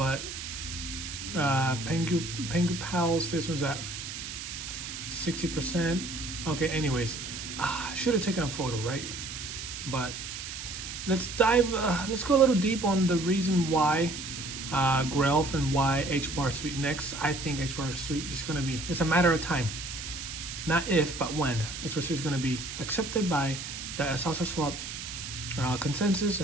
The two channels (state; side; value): noise; right; hiss, 8 dB below the sound